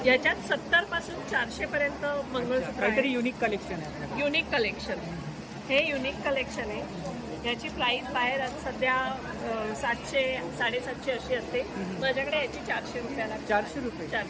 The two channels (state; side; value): identical; both; correlation 1.00